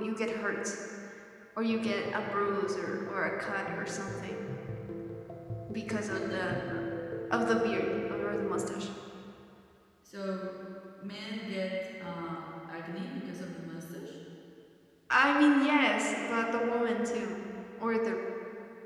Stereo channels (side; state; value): both; identical; correlation 1.00